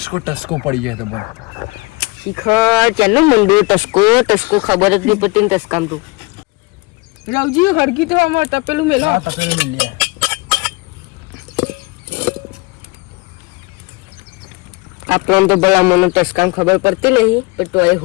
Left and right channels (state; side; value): quieter; right; 26.1 dB